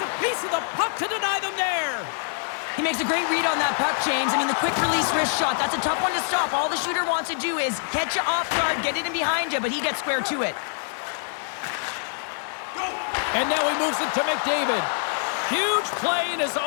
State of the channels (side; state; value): right; silent; digital silence